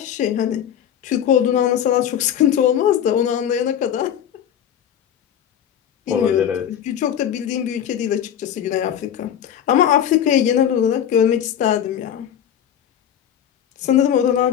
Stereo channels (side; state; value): right; quieter; 9.6 dB